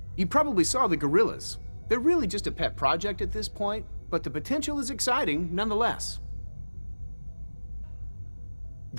You probably saw the gorillas. They're really just a pet project at this point, but the potential is exciting nonetheless.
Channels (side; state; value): both; inverted; correlation -1.00